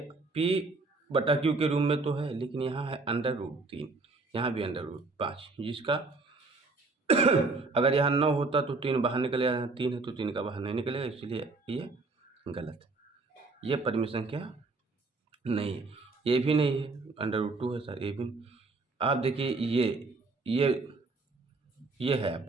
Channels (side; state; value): left; quieter; 3.6 dB